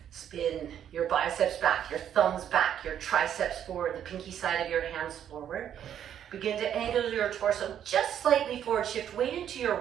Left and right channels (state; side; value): quieter; left; 9.7 dB